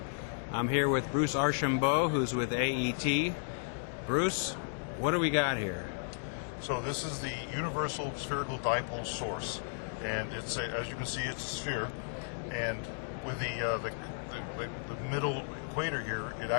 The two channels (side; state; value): right; silent; digital silence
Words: I'm here with Bruce Archambeault, who's with AET. Bruce, what do we got here? So this is the Universal Spherical Dipole Source, and it's as you can see, it's a sphere, and with the middle equator here, it